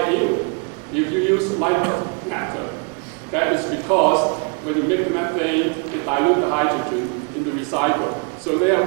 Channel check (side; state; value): left; quieter; 34.6 dB